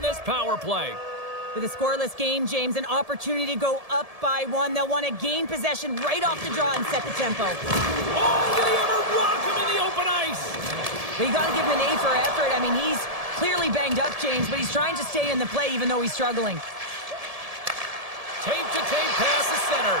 this power play. With a scoreless game, James, an opportunity to go up by one. They'll want to gain possession right off the draw and set the tempo. Oh, did he ever rock him in the open ice? But you got to give him an A for effort. I mean, he's clearly banged up, James, but he's trying to stay in the play even though he's struggling. Tape-to-tape pass is center.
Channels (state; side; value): late; left; 1.7 ms